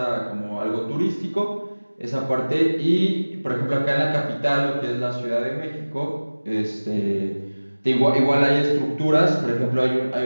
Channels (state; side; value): inverted; both; correlation -1.00